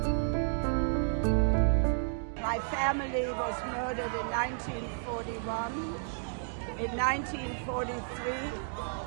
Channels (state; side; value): silent; left; digital silence